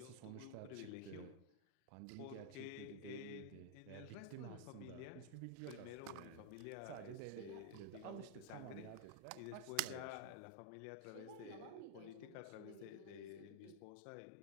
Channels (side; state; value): both; different; correlation 0.00